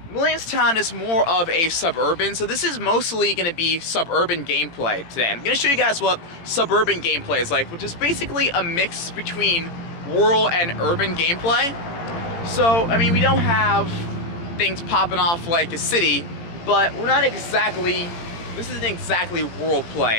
Williamstown is more of a suburban, so this is mostly going to be suburban gameplay today. I'm going to show you guys what suburban gameplay is like, which is basically a mix between rural and urban gameplay. So, I mean, we don't have things popping off like a city, but we're not exactly, this isn't exactly rural play.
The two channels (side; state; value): right; late; 18 ms